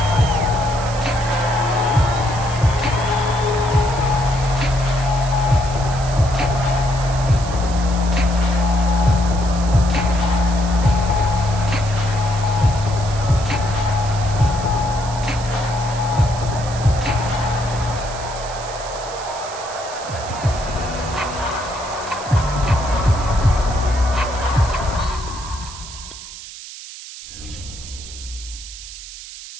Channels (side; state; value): right; noise; hiss, 13 dB below the sound